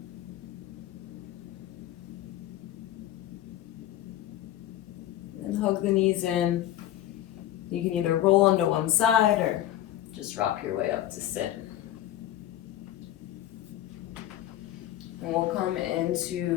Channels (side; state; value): right; quieter; 13.1 dB